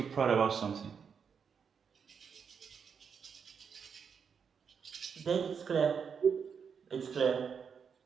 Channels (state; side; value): quieter; left; 6.6 dB